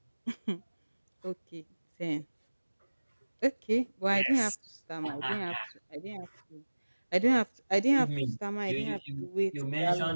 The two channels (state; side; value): inverted; both; correlation -1.00